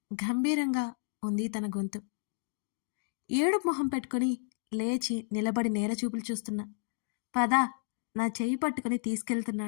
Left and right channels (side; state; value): right; silent; digital silence